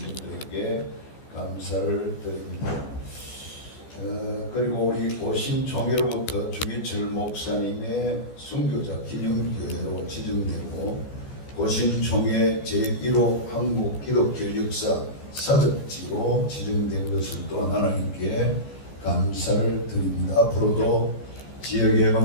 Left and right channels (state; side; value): late; right; 14 ms